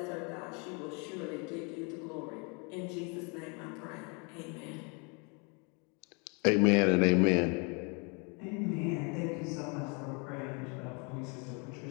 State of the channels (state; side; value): quieter; right; 33.4 dB